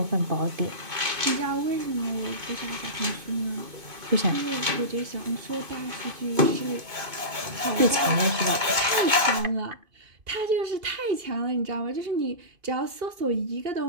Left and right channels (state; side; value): late; left; 2.5 ms